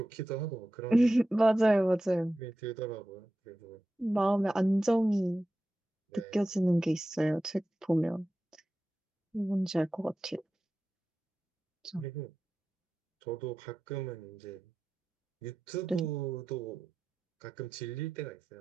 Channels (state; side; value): normal; both; correlation 0.93